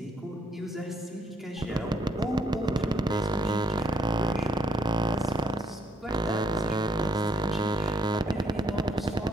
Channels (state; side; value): normal; both; correlation 0.70